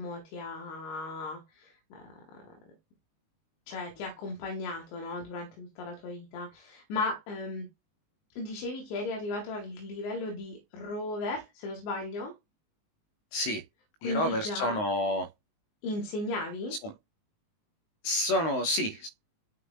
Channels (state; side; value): late; right; 19 ms